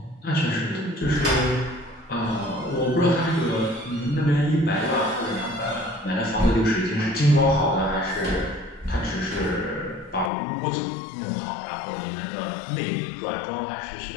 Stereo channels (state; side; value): drops out; right; at 10.3 s